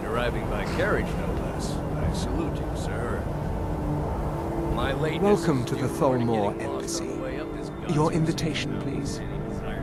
arriving by carriage, no less. I salute you, sir. My lateness... Welcome to the Thalmor Embassy. Your invitation, please.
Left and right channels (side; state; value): both; identical; correlation 1.00